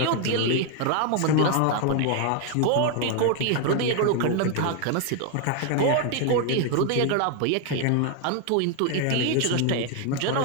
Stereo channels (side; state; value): both; different; correlation 0.01